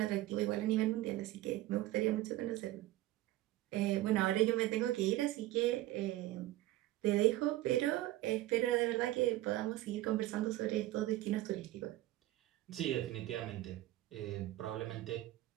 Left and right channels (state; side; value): quieter; left; 16.2 dB